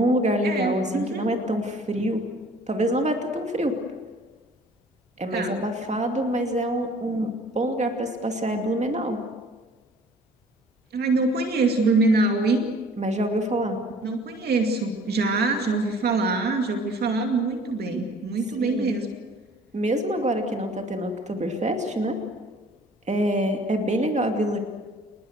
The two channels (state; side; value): normal; both; correlation 0.52